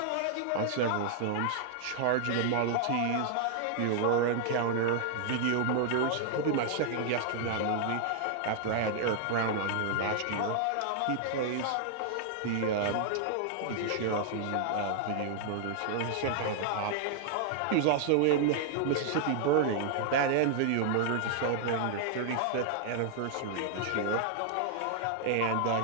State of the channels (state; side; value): different; both; correlation -0.01